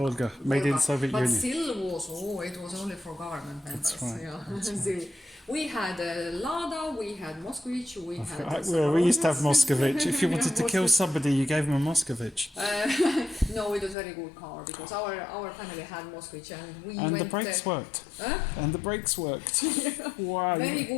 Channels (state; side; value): drops out; right; at 14.0 s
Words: made in Soviet but Union. ZIL was only for government members. That's right. Yeah. ZIL. We had Lada, we had Moskvich, we had. We used to have Moscovich. If you wanted to kill somebody, you gave them a Moscovich. No, it was a very good car because our family had Moskvich and we And went. the brakes worked. Huh? And the brakes worked. Wow. Very